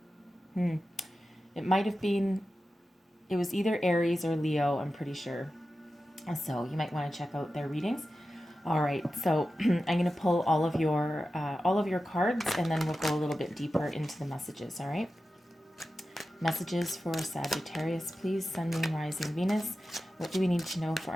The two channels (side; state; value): both; normal; correlation 0.93